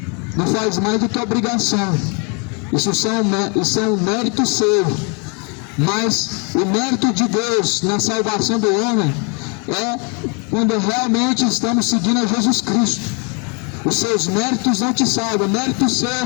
Não faz mais do que obrigação. Isso é um mérito seu. Mas o mérito de Deus na salvação do homem é quando realmente estamos seguindo a Jesus Cristo. Os seus méritos não te salvam. Mérito seu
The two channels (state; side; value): quieter; right; 34.9 dB